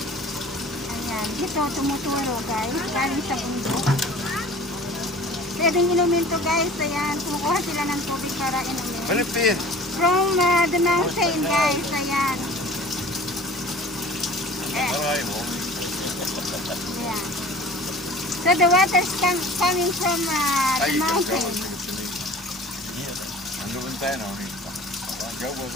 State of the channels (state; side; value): normal; both; correlation 0.44